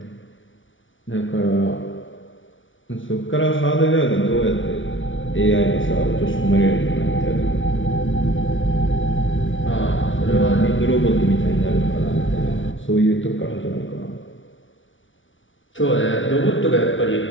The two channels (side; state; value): right; late; 0.56 ms